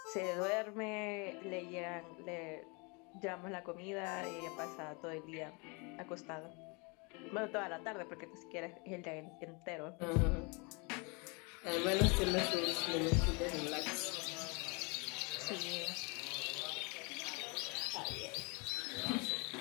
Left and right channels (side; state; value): right; quieter; 31.1 dB